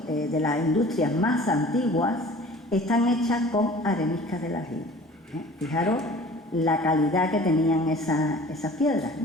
de las industrias más antiguas, están hechas con areniscas del aljibe. Fijaros la calidad que tenían esas piedras,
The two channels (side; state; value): both; normal; correlation 0.46